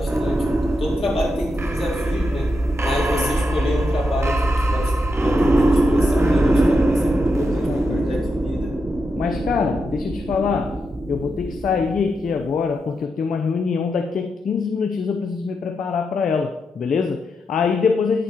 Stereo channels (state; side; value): normal; both; correlation 0.84